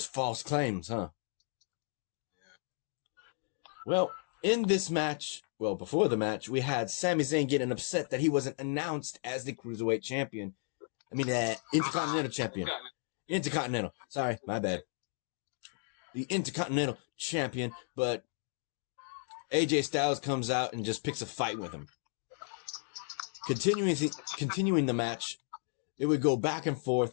false claims, huh? Well, in this match, before the match, we had Sami Zayn getting upset that he wasn't announced as the Cruiserweight champion. Intercontinental champion. Intercontinental. Sorry, my bad. The Intercontinental champion, but AJ Styles comes out and just picks a fight with him. Continuing the match, it would go back and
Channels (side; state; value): right; silent; 55 dB below the other